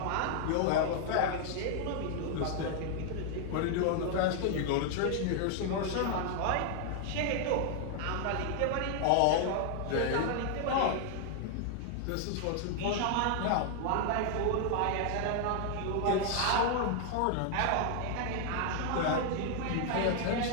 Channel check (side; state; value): both; different; correlation 0.00